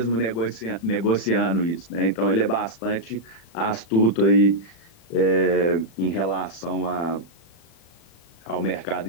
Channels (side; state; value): right; late; 36 ms